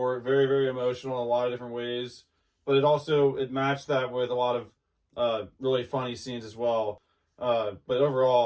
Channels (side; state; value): both; identical; correlation 1.00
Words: Very, very emotional in a lot of different ways. But it matched that with a lot of really funny scenes as well. But